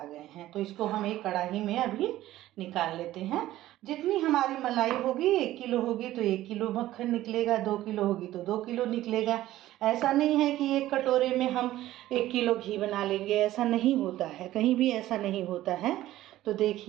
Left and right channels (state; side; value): quieter; left; 14.8 dB